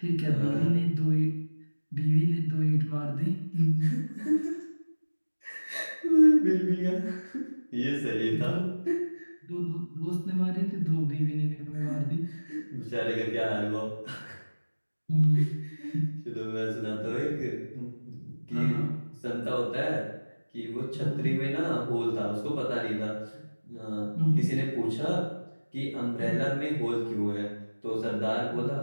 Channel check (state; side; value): inverted; both; correlation -1.00